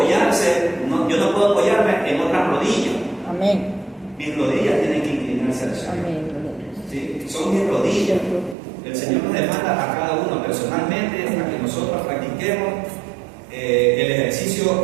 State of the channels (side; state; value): left; drops out; at 8.6 s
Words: yo no puedo apoyarme en otras rodillas. Amén. Mis rodillas tienen que inclinarse al Señor. Amén. Sí, son mis rodillas. El Señor nos demanda a cada uno personalmente para que nosotros practiquemos el ejercicio